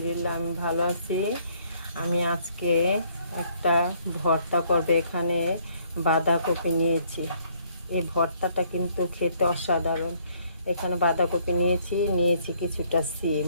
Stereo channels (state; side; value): inverted; both; correlation -0.65